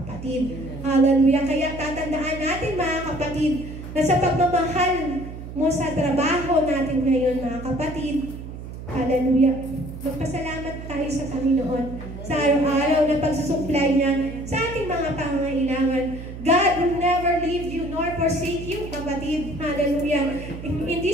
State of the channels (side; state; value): right; noise; hum, 11 dB below the sound